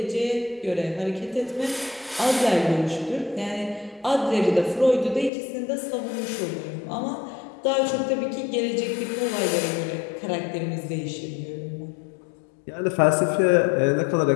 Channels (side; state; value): right; drops out; at 5.3 s